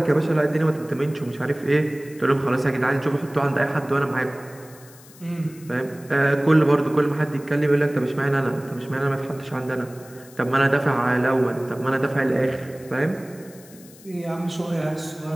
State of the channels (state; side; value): noise; left; hiss, 22 dB below the sound